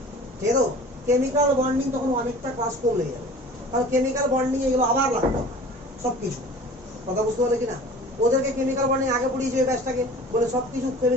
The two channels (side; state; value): both; normal; correlation 0.43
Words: ঠিক আছে? কেমিক্যাল বন্ডিং তখন অনেকটা ক্লাস কম লেগে যাবে, কারণ কেমিক্যাল বন্ডিং এগুলো আবার লাগবে সব কিছু। কথা বুঝতে পারলে কিনা? ওদেরকে কেমিক্যাল বন্ডিং আগে পড়িয়েছে ওই ব্যাচটাকে, বলে সব কিছু